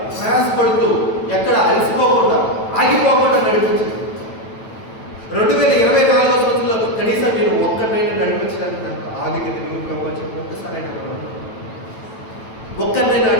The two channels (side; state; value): right; late; 9.1 ms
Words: ప్రయాసపడుతూ ఎక్కడ అలసిపోకుండా, ఆగిపోకుండా నడిపించింది. 2024 సంవత్సరంలో కనీసం నేను ఒక్కరినైనా నడిపించడానికి నాకు ఆధిక్యత నువ్వు ప్రభు అని చెప్పి ఒక్కసారి ఒక్కరినైనా